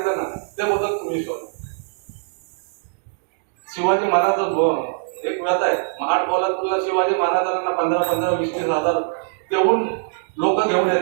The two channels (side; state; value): left; silent; digital silence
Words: ना, ते बोलतात तुम्ही शोधा. शिवाजी महाराज एक व्यथा आहे, महाड पोलादपूरला शिवाजी महाराजांना 15-20 हजार तेवढून लोक घेऊन